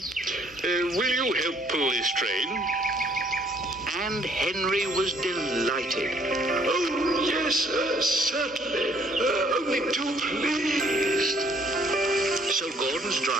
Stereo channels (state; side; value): normal; both; correlation 0.63